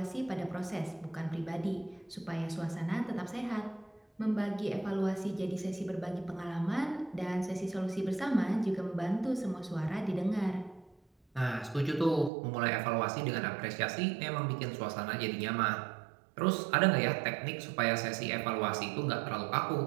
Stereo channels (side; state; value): left; drops out; at 12.3 s